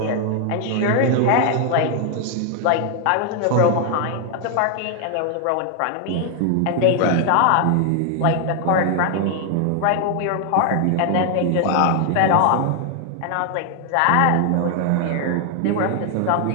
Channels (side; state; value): both; different; correlation 0.00